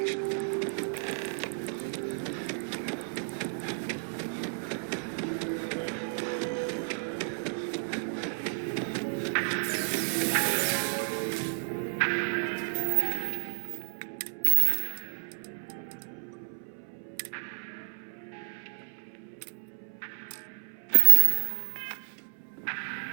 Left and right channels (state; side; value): silent; left; 57 dB below the other